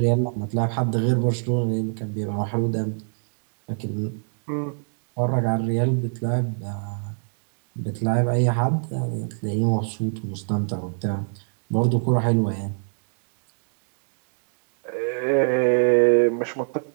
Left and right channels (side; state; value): left; silent; digital silence